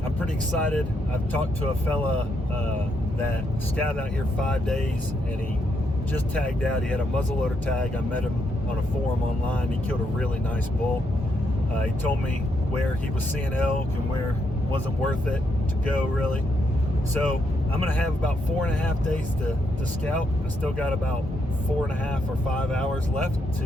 pretty excited. I've talked to a fella that scouted out here 5 days, and he just tagged out. He had a muzzleloader tag. I met him on a forum online. He killed a really nice bull. He told me where he was seeing elk and where it wasn't worth it to go, really. So I'm gonna have about 4.5 days to scout. I still got about 4.5 or 5 hours left to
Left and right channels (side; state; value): both; normal; correlation 0.78